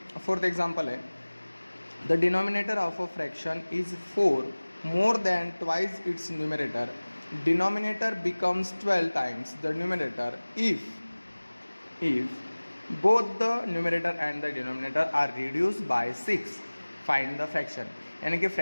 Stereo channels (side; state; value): both; inverted; correlation -1.00